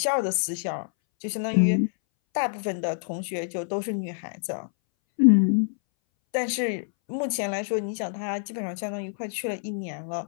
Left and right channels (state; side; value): silent; right; 60 dB below the other